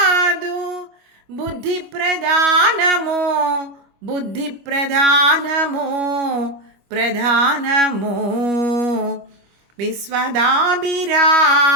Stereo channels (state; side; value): late; left; 25 ms